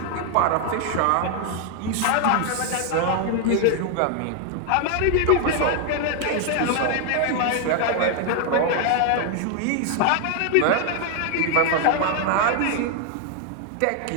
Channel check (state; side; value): different; both; correlation 0.00